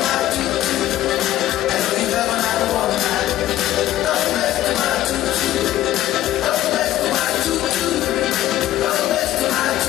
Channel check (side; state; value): right; quieter; 13.8 dB